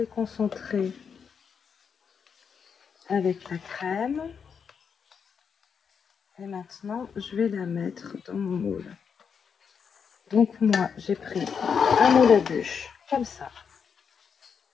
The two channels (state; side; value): quieter; right; 6.6 dB